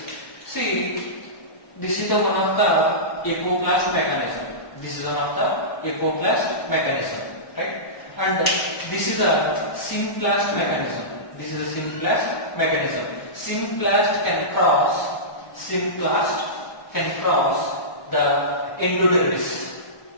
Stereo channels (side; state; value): right; late; 1.2 ms